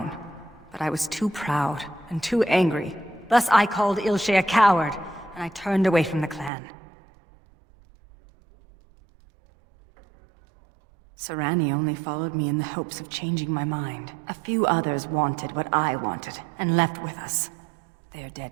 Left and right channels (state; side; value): drops out; left; at 6.5 s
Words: But I was too proud and too angry. Thus I called Ilshay a coward, and I turned away from the clan. Sarani only followed me in the hopes of changing my mind. A few others wanted what I wanted, and left with us. They are